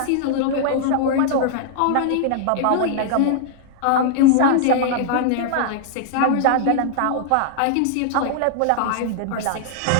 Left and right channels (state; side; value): different; both; correlation -0.01